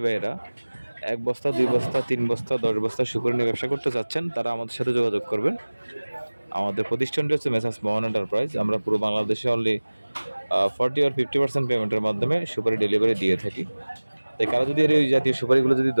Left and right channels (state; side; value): inverted; both; correlation -1.00